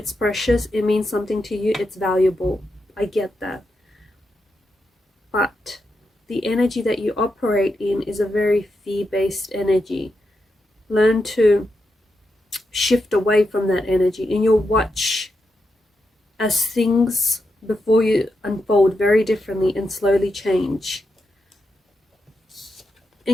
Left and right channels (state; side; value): normal; both; correlation 0.85